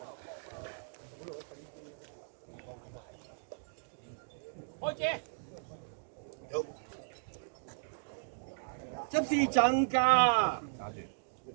執事陣架，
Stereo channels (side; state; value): left; silent; digital silence